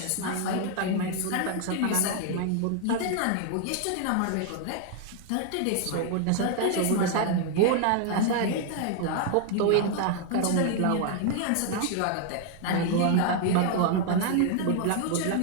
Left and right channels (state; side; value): different; both; correlation 0.00